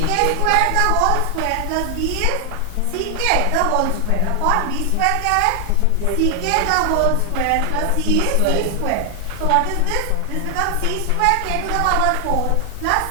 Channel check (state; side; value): different; both; correlation 0.00